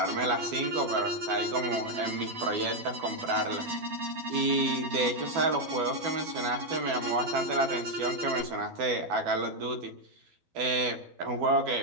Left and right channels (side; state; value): left; late; 12 ms